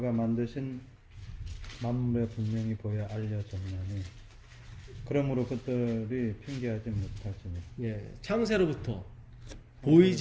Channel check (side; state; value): both; identical; correlation 1.00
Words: 만드신 만물에 분명히 보여 알려졌나니 그러므로 그들이 핑계하지 못하지니. 예, 창세로부터